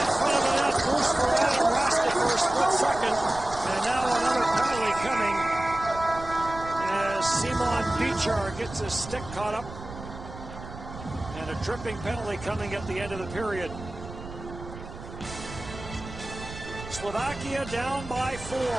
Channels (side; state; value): right; noise; rumble, 13 dB below the sound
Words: front of the net. Loose for Adam Raska for a split second. And now another penalty coming as Simon Bichar gets his stick caught up. And a tripping penalty coming at the end of the period. Slovakia down by 4.